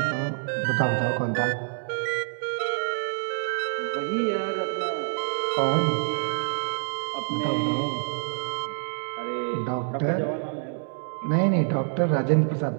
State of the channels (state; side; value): silent; left; digital silence